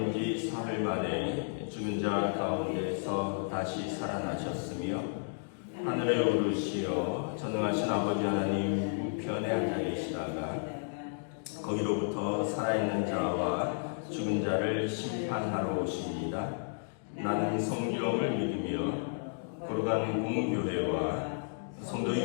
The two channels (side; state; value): right; silent; digital silence